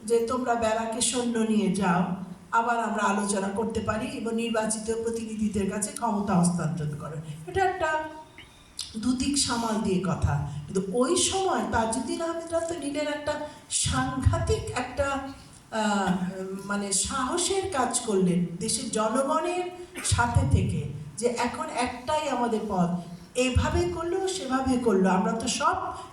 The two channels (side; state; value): both; identical; correlation 1.00